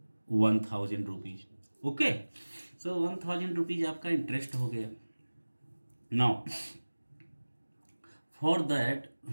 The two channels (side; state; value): both; inverted; correlation -1.00